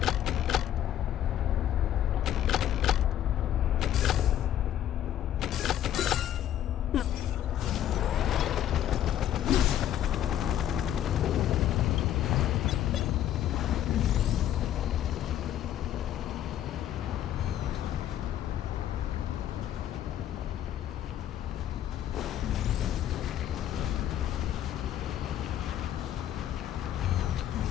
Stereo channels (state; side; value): quieter; right; 11.3 dB